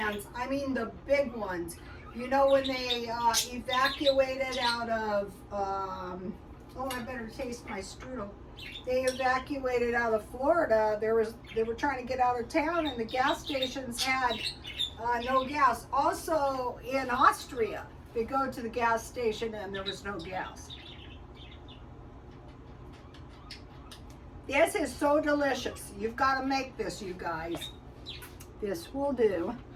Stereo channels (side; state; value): both; identical; correlation 1.00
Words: I mean the big ones. You know when they evacuated out of, oh, I better taste my strudel. They evacuated out of Florida. They were trying to get out of town, and the gas stations had no gas. Also in Austria, they go to the gas station and there was no gas. This is so delicious. You've got to make this, you guys. This will do.